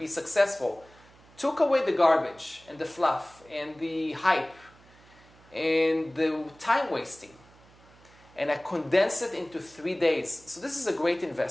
successful, took away the garbage and the fluff and the hype and the time wasting, and I condensed it into 3 days. So this is a great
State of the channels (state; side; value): noise; right; hum, 26 dB below the sound